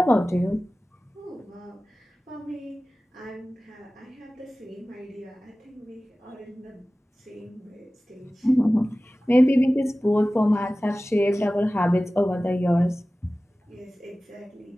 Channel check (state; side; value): normal; both; correlation 0.97